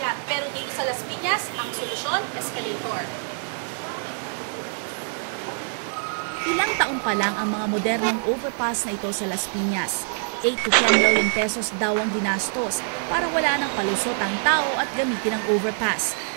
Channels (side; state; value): left; silent; 59 dB below the other